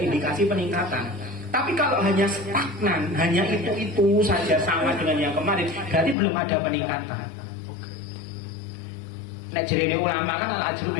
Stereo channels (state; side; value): drops out; right; at 6.2 s